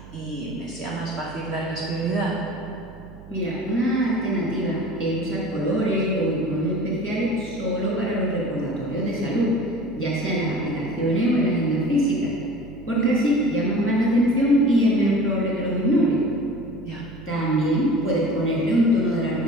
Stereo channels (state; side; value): noise; right; hum, 18 dB below the sound